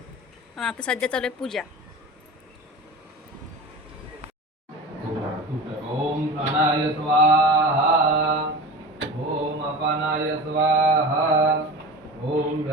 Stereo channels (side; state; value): both; normal; correlation 0.32